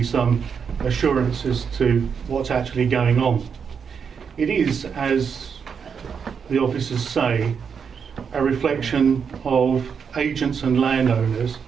some assurance as to what's actually going on. It is, as the officers say, a reflection of agents and landowners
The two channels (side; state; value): left; quieter; 6.6 dB